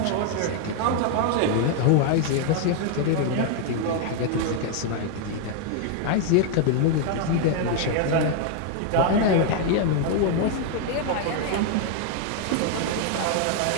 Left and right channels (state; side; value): different; both; correlation 0.00